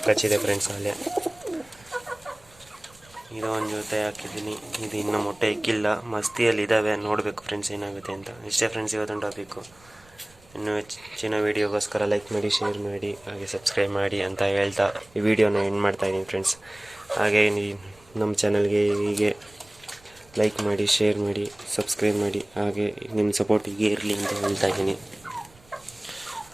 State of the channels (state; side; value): noise; right; rumble, 27 dB below the sound